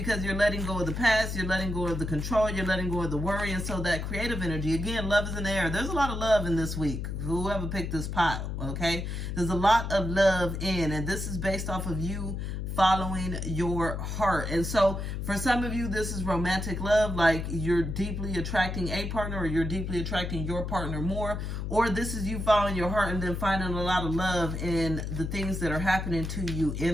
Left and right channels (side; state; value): left; noise; hum, 4 dB below the sound